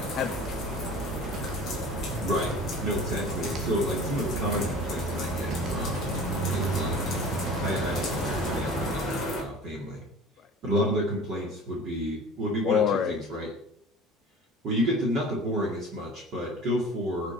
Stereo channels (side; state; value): both; normal; correlation 0.41